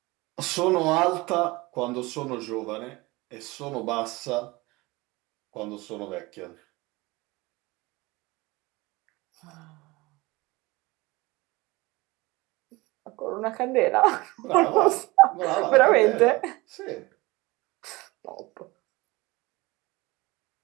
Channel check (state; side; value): quieter; left; 22.4 dB